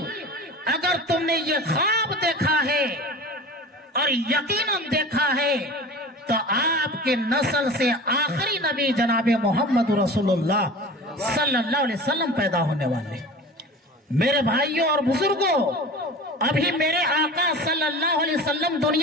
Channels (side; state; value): both; normal; correlation 0.37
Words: اگر تم نے یہ خواب دیکھا ہے اور یقیناً دیکھا ہے تو آپ کے نسل سے آخری نبی جناب محمد رسول اللہ صلی اللہ علیہ وسلم پیدا ہونے والے. میرے بھائیوں اور بزرگوں، ابھی میرے آقا صلی اللہ علیہ وسلم